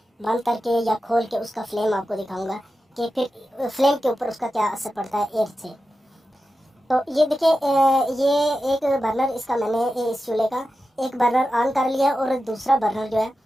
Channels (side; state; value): both; normal; correlation 0.92